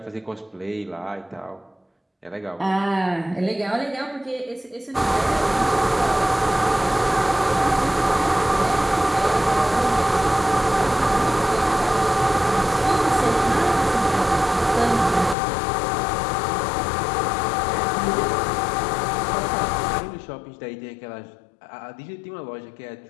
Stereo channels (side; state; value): right; drops out; at 15.4 s